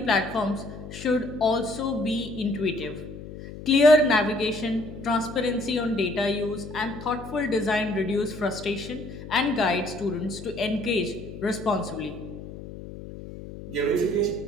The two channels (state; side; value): noise; left; hum, 12 dB below the sound